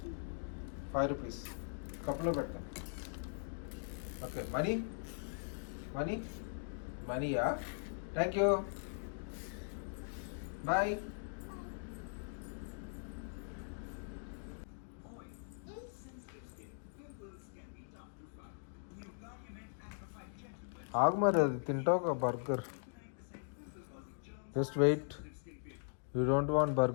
5 రూపీస్. కప్లో పెడతా. ఓకే. మనీ మనీ మనీయా? Thank you. బాయ్. ఆగు మరి, అది తింటావు ఒక burger. Just wait. You don't want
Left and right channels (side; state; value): right; silent; digital silence